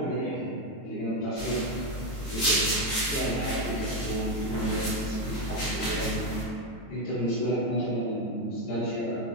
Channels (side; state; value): right; late; 22 ms